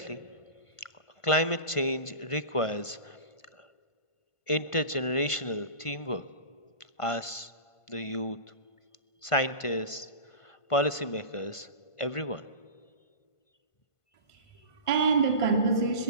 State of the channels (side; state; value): right; late; 1.5 ms